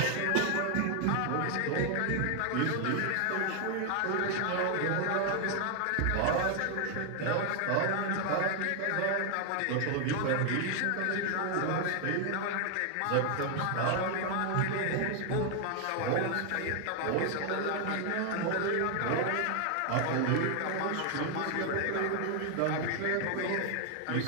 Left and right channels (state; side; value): different; both; correlation 0.00